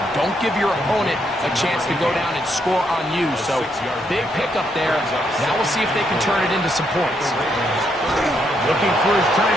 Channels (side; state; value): both; normal; correlation 0.76